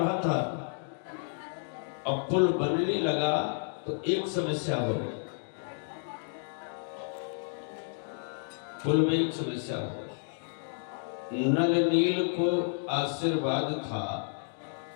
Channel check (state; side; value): silent; right; digital silence